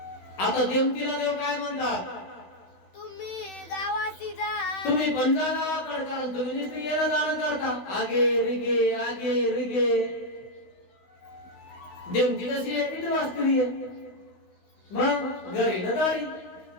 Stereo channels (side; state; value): right; late; 16 ms